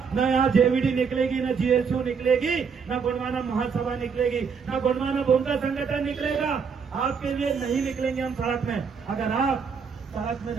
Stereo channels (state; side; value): quieter; left; 6.0 dB